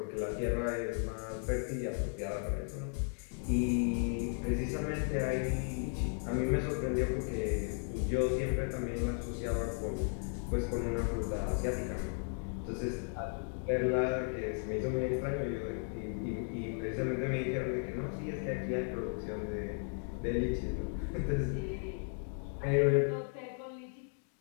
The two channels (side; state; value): right; silent; 54 dB below the other